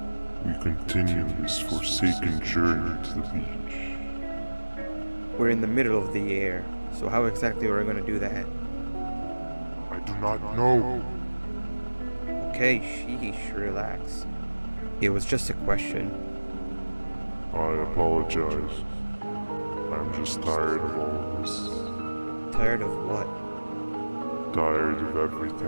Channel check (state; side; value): inverted; both; correlation -1.00